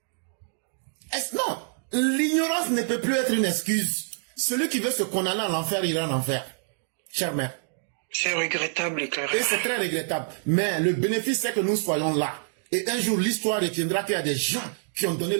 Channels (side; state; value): left; silent; digital silence